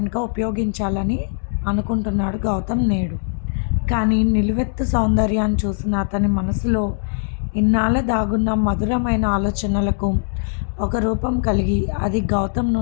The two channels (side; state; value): right; silent; digital silence